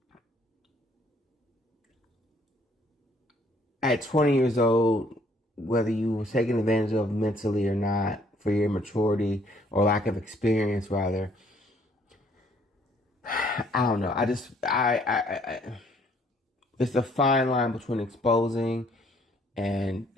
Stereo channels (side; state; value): both; normal; correlation 0.63